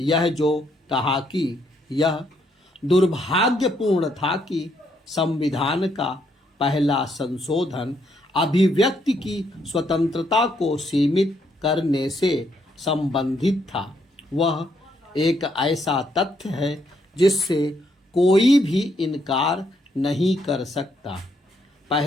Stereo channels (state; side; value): normal; both; correlation 0.74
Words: जो कहा कि यह दुर्भाग्यपूर्ण था कि संविधान का पहला संशोधन अभिव्यक्ति की स्वतंत्रता को सीमित करने से संबंधित था। वह एक ऐसा तथ्य है जिससे कोई भी इनकार नहीं कर सकता।